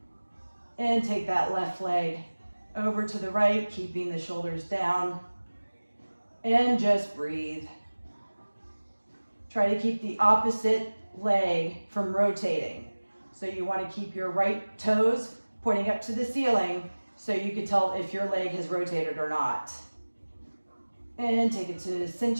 and take that left leg over to the right, keeping the shoulders down. And just breathe. Try to keep the opposite leg from rotating. So you want to keep your right toes pointing up to the ceiling so you can tell if your leg has rotated or not. And take it to the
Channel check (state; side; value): inverted; both; correlation -1.00